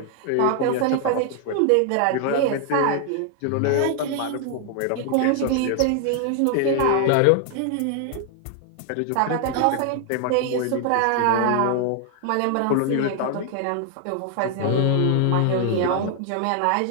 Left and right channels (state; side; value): different; both; correlation 0.00